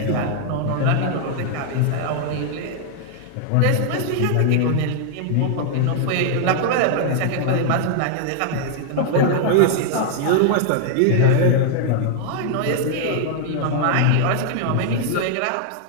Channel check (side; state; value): both; different; correlation 0.00